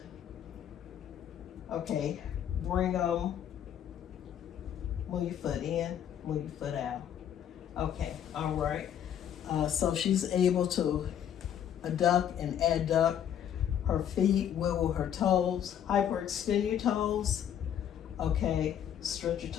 Okay, bring them, move your foot in, move your foot out. Okay, all right. So she's able to adduct and adduct her feet, wiggle her toes, hyperextend your toes. Okay, stretch your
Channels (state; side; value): quieter; right; 9.7 dB